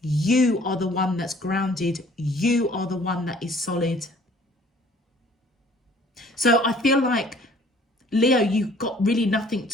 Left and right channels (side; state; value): both; normal; correlation 0.55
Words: are the one that's grounded. You are the one that is solid. So I feel like, Leo, you've got really nothing